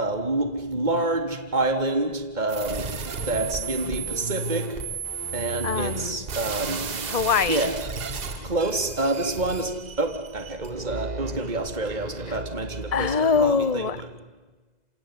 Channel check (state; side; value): late; left; 2.0 ms